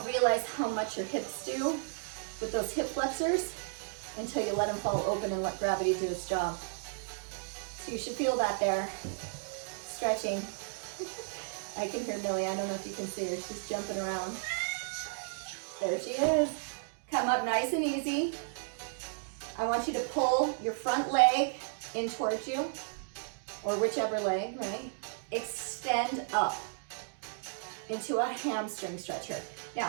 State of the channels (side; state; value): left; silent; digital silence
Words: realize how much your hips do with those hip flexors until you let them fall open and let gravity do its job. So you should feel that there. Stretching. I can hear Millie. I don't know if you can see her. She's jumping around. There she is. Come up nice and easy. I want you to pull your front leg in towards you, or whichever leg, right? Extend up into a hamstring stretcher.